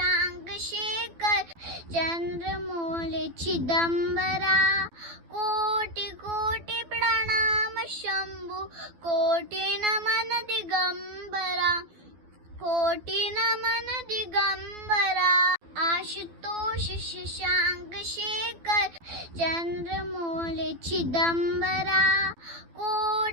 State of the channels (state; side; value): late; left; 12 ms